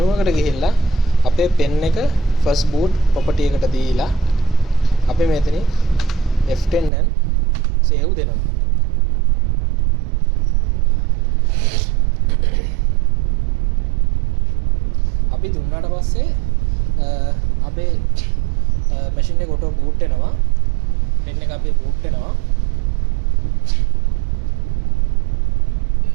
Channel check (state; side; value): drops out; left; at 6.9 s